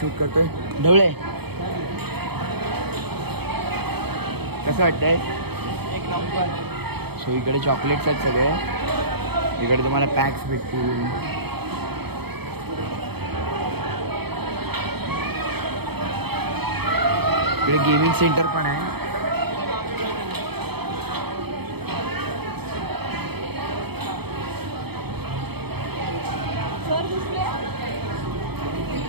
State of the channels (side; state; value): left; late; 0.97 ms